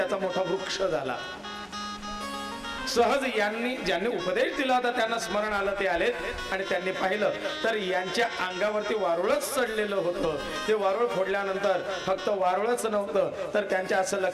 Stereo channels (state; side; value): identical; both; correlation 1.00